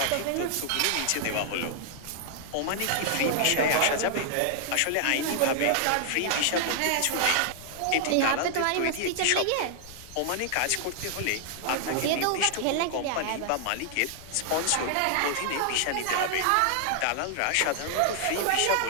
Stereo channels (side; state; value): both; different; correlation 0.00